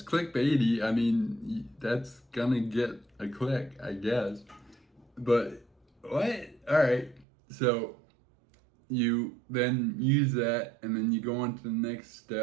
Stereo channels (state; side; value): drops out; left; at 7.2 s